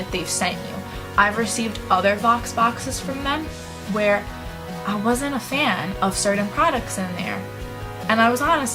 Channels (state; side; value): identical; both; correlation 1.00